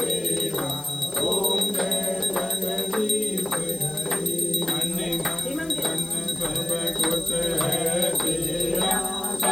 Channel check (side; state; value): left; noise; hiss, 18 dB below the sound